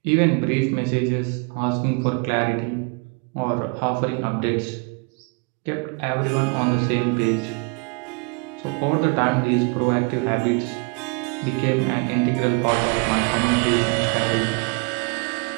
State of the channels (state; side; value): quieter; left; 31.9 dB